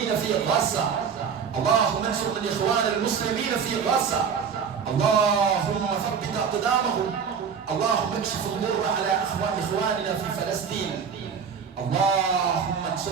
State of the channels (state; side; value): quieter; left; 6.7 dB